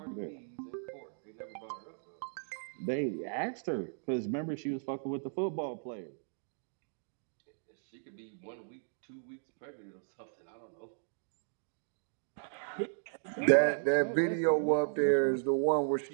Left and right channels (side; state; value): left; silent; digital silence